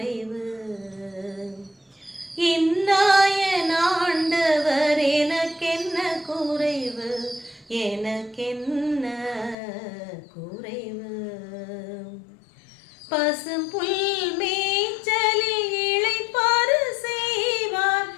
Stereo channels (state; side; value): drops out; right; at 9.6 s